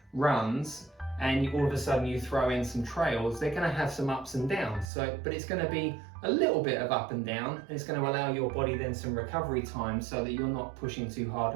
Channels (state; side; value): drops out; left; at 4.9 s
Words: runs and all of a sudden you throw in some trails, they're going to have some ups and downs. But it's going to be a little bit of up and down, and it's going to allow your body then some recovery time so that you're not pushing too hard